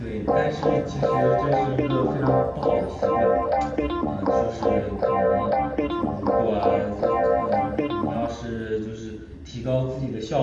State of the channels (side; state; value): both; identical; correlation 1.00